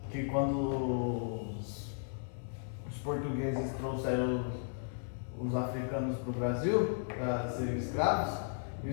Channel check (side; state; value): right; silent; 54 dB below the other